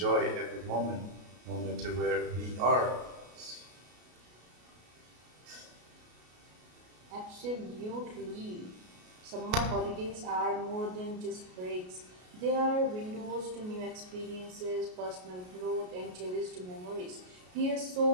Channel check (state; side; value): late; left; 33 ms